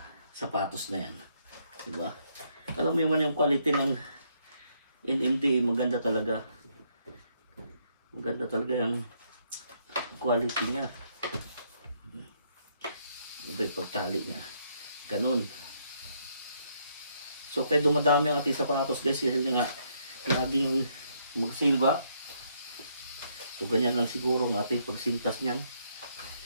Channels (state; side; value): inverted; both; correlation -0.72